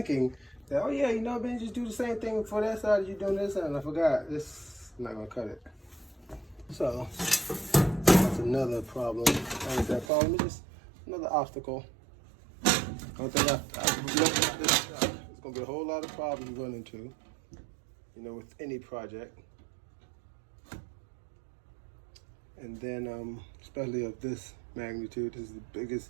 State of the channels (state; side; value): drops out; left; at 10.1 s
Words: that, oh yeah, you know, Ben, just do the same thing for that side as you're doing this side. And I forgot, this, I'm not gonna cut it. So that's another problem. What is that problem? It's just another obstacle. I don't think I've looked at this gonna be a whole lot of problems you run into, with any project. And then, especially of this magnitude, this is the